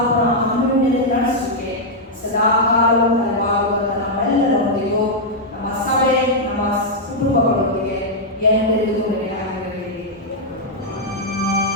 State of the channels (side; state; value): both; normal; correlation -0.04